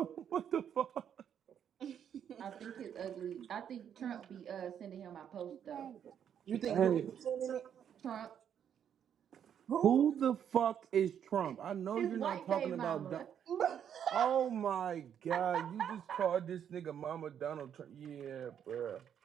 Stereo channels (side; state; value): left; quieter; 8.8 dB